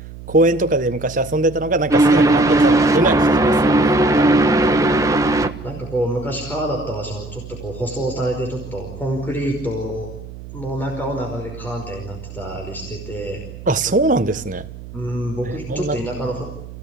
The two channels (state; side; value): noise; right; hum, 14 dB below the sound